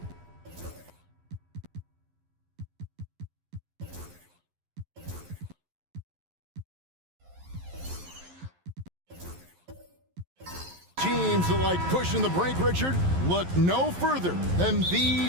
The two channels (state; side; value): late; left; 11 ms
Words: teams that like pushing the break, Richard, look no further than